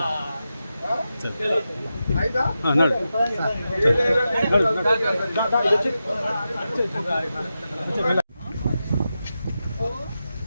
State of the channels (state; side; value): inverted; both; correlation -0.90